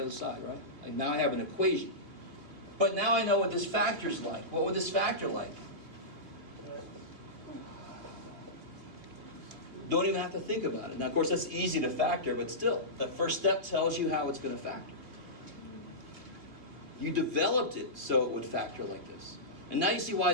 side, right? Like now I have an equation. But now I know what this factor's like. What would this factor like? Don't even have to think about it. Now, of course, that's easy to factor, but still, the first step tells you how it's going to factor. You developed it so it would factor like this. And now you see why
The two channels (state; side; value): late; left; 2.6 ms